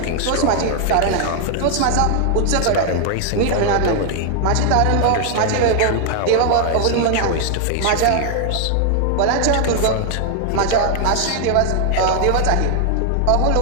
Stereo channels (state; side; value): different; both; correlation 0.00